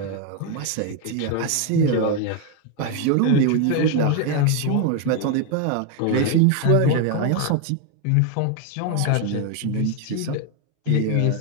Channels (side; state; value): both; different; correlation 0.01